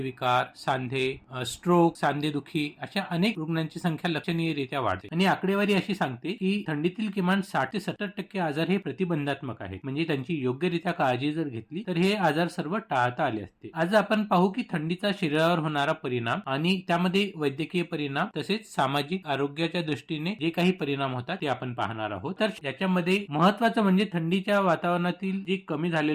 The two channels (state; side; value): identical; both; correlation 1.00